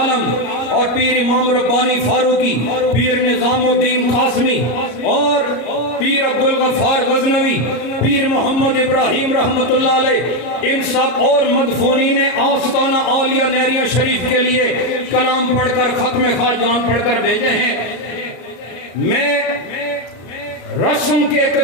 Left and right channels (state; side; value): late; right; 34 ms